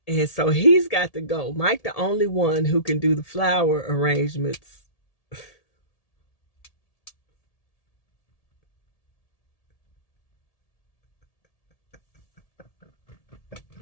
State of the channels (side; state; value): right; late; 1.7 ms